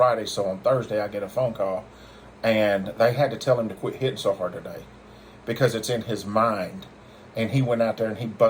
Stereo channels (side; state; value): both; identical; correlation 1.00